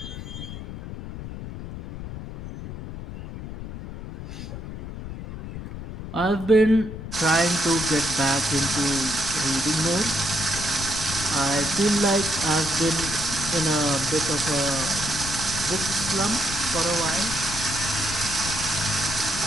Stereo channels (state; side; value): noise; left; rumble, 9 dB below the sound